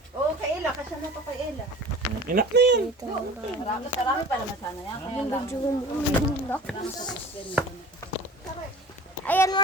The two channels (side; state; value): both; normal; correlation 0.41